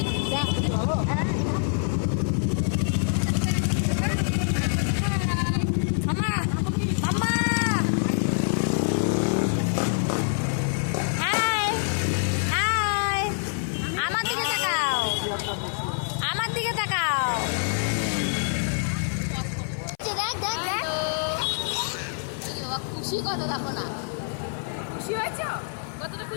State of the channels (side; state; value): right; silent; 57 dB below the other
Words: খুশি কত দেখো না, খুশি হয়েছে? কতটা